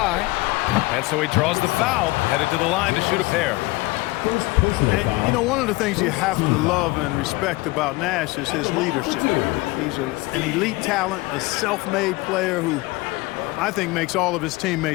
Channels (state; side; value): quieter; right; 21.6 dB